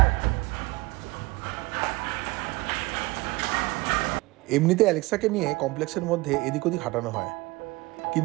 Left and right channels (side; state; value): left; quieter; 22.4 dB